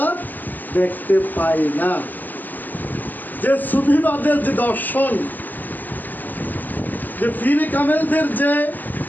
দেখতে পাই না। যে সুফিবাদের যে দর্শন, যে পীর কামেলদের যে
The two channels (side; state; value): right; late; 0.086 ms